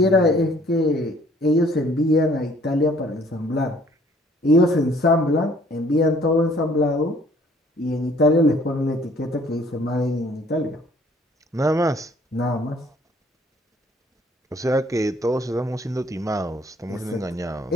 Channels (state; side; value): normal; both; correlation 0.59